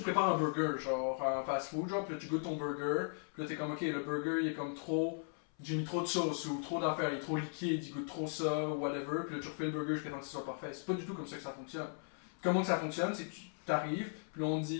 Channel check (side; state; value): right; silent; 53 dB below the other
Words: prépares un burger, genre en fast food, genre, puis là tu goûtes ton burger, puis là t'es comme, ok, le burger il est comme trop, j'ai mis trop de sauce ou trop d'affaires, il est trop liquide, il goûte trop ça, ou whatever, puis là tu refais le burger jusqu'à temps que ce soit parfait. C'est pas du tout comme ça que ça fonctionne. Comment que ça fonctionne, c'est que tu t'arrives, puis là on te dit,